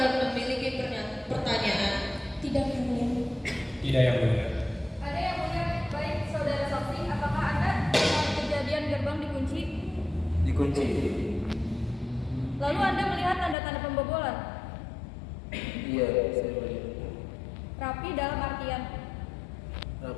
memiliki pertanyaan? Tidak, Yang Mulia. Tidak, Yang Mulia. Ada yang mulia. Baik, saudara saksi, apakah Anda saat kejadian gerbang dikunci? Dikunci. Lalu Anda melihat tanda-tanda pembobolan? Iya, saya melihat. Rapi dalam artian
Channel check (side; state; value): right; drops out; at 13.6 s